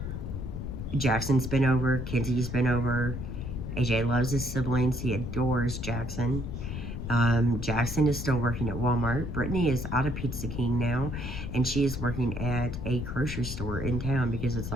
Jackson's been over, Kenzie's been over. AJ loves his siblings. He adores Jackson. Jackson is still working at Walmart. Brittany is out of Pizza King now, and she is working at a grocery store in town because it's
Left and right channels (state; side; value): noise; left; rumble, 6 dB below the sound